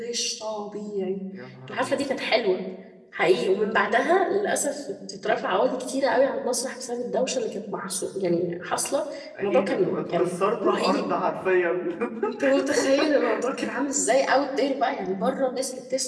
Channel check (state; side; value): identical; both; correlation 1.00